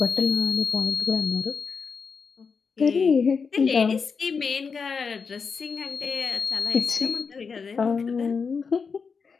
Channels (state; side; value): quieter; right; 5.5 dB